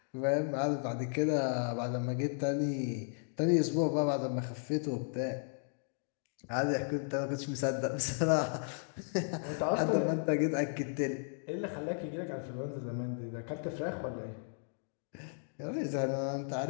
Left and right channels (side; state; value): right; silent; digital silence